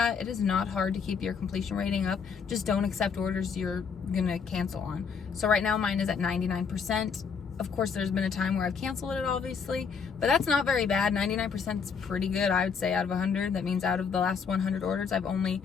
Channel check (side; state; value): right; quieter; 6.0 dB